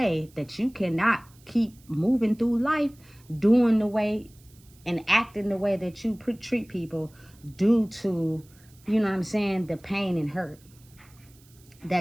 that you cannot keep moving through life doing the way and acting the way that you treat people due to, you know what I'm saying, the pain and hurt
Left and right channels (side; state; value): right; noise; hiss, 28 dB below the sound